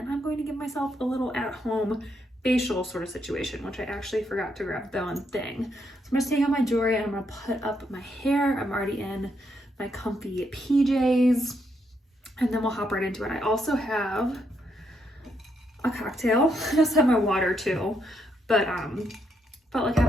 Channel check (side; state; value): both; normal; correlation 0.77